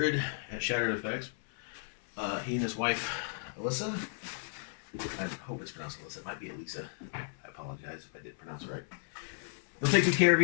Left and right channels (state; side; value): silent; right; 55 dB below the other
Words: at Shattered FX. He and his wife, Alyssa. I hope it's pronounced Alyssa. It might be Elisa. I apologize if I did pronounce it right. They'll take good care of